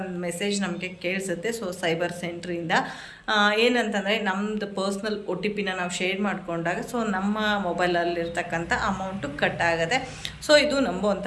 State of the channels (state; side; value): identical; both; correlation 1.00